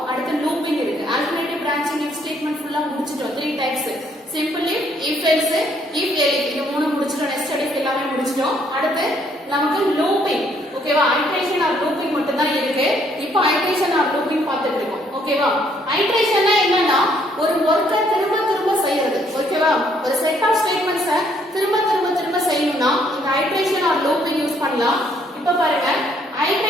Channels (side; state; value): both; normal; correlation 0.67